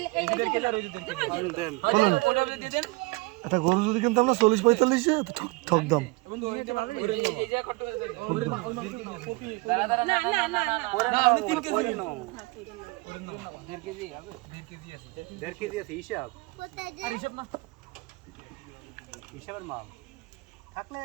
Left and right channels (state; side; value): quieter; left; 25.2 dB